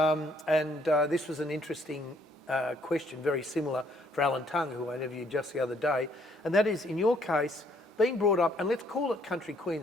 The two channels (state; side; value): normal; both; correlation 0.66